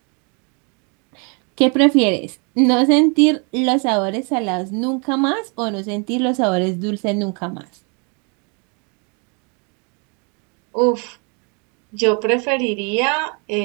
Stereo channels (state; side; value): quieter; left; 35.1 dB